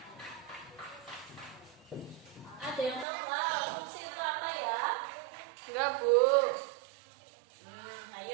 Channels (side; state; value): left; drops out; at 3.1 s